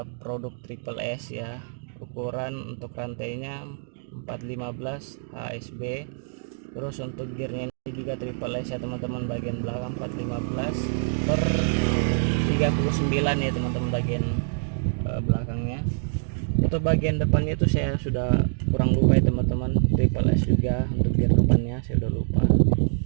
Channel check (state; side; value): silent; left; digital silence